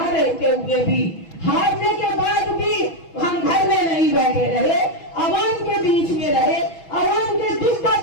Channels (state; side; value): late; right; 6.1 ms